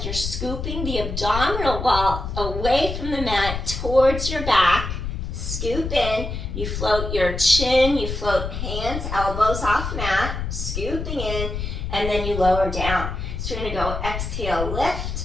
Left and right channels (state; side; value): noise; left; rumble, 5 dB below the sound